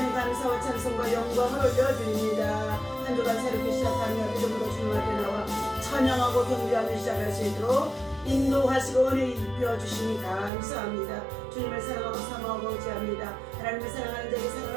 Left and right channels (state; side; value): drops out; left; at 10.5 s